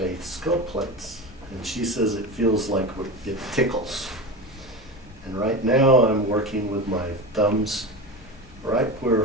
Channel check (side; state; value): left; noise; rumble, 20 dB below the sound